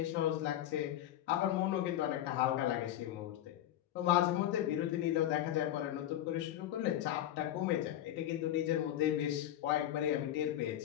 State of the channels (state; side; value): quieter; right; 12.3 dB